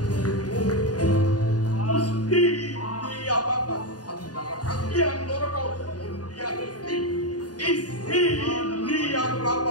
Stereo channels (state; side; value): late; right; 0.69 ms